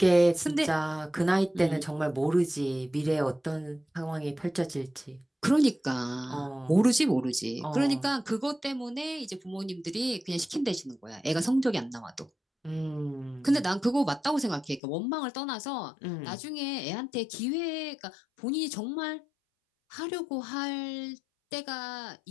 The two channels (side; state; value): right; drops out; at 14.8 s